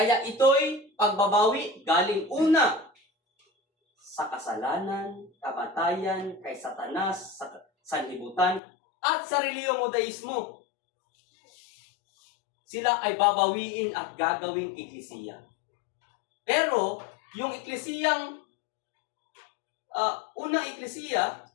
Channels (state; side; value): drops out; right; at 8.6 s